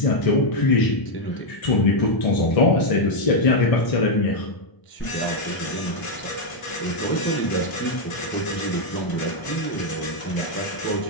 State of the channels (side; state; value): right; late; 1.0 ms